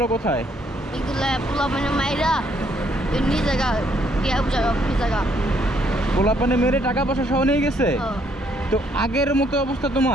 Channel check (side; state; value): both; normal; correlation 0.69